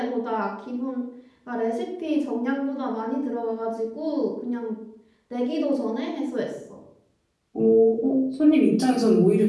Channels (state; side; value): identical; both; correlation 1.00